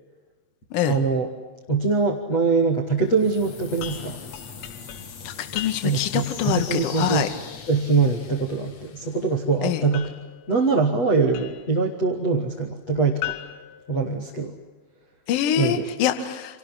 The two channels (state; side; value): late; right; 8.4 ms